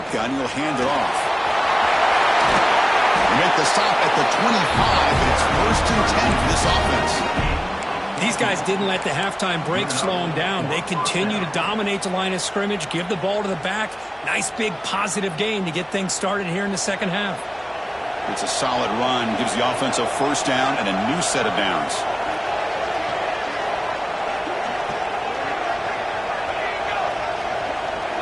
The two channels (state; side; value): identical; both; correlation 1.00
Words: he'll hand it off. They make the stop at the 25, and it's first and 10 for this offense. These guys didn't let the halftime break slow them down. They continue to dominate the line of scrimmage, give the ball to the back. Nice big positive gain to get things started here in the second half. It's a solid run, gives the offense a first down and a new set of downs.